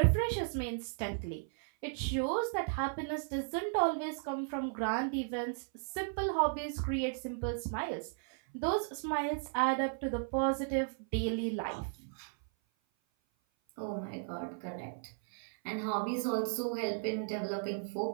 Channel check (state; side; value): silent; left; 54 dB below the other